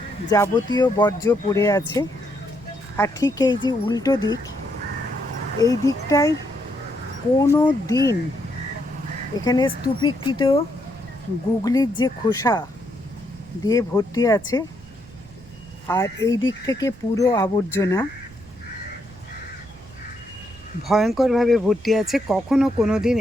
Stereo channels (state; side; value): noise; right; rumble, 22 dB below the sound